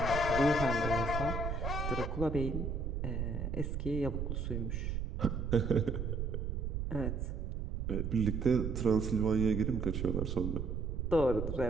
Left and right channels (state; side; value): noise; right; rumble, 2 dB below the sound